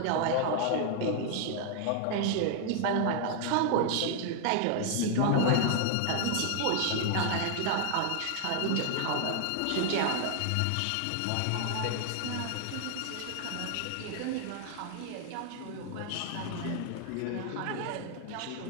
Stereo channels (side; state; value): both; different; correlation 0.00